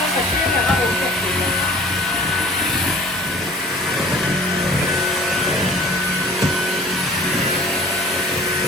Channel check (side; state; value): both; normal; correlation 0.47